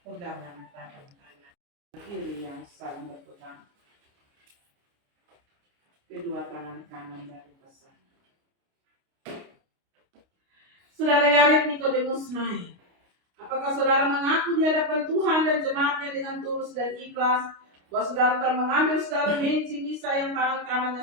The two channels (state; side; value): late; left; 29 ms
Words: tangan kanan, kiri yang saling berpegang. Kedua tangan kanan dari pasangan. Saudara Yared Nikodemus naik. Apakah saudara mengaku di hadapan Tuhan dan jemaat-Nya dengan tulus dan ikhlas bahwa saudara telah mengambil saudara Misa yang tangan kanannya